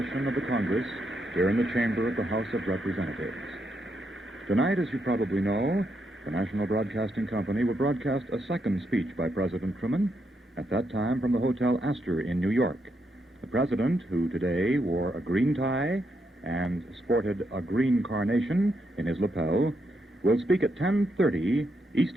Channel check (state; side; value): normal; both; correlation 0.80